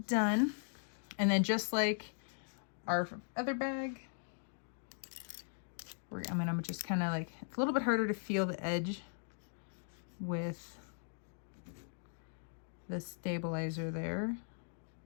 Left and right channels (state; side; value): silent; right; digital silence